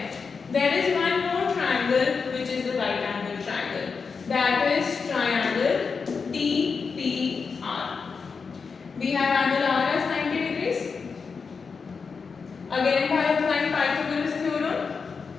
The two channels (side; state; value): right; quieter; 5.2 dB